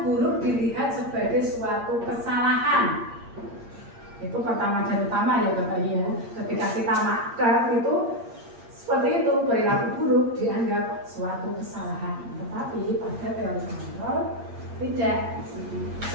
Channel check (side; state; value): left; late; 8.6 ms